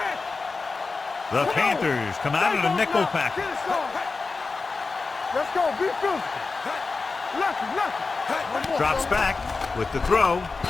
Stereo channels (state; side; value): quieter; right; 4.1 dB